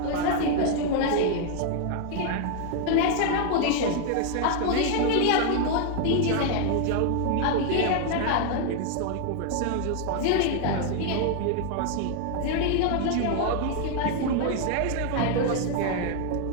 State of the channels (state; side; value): different; both; correlation 0.00